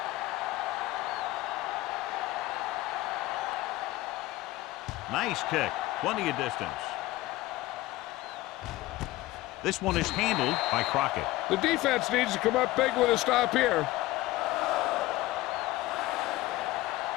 Nice kick. Plenty of distance. This one is handled by Crockett. The defense needs to come up big with a stop here.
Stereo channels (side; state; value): right; quieter; 18.0 dB